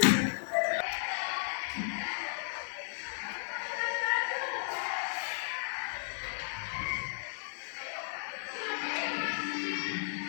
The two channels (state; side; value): silent; right; digital silence